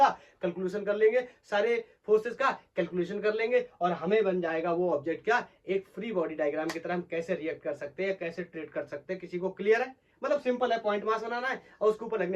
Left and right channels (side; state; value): both; identical; correlation 1.00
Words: कैलकुलेशन कर लेंगे, और हमें बन जाएगा वो ऑब्जेक्ट क्या? एक फ्री बॉडी डायग्राम की तरह हम कैसे रिएक्ट कर सकते हैं, कैसे ट्रीट कर सकते हैं। किसी को क्लियर है? मतलब सिंपल है, पॉइंट मास बनाना है और उसके ऊपर